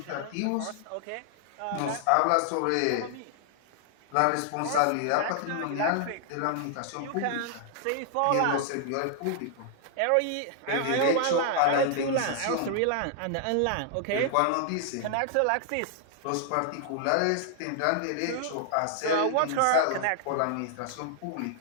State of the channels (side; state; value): both; different; correlation 0.00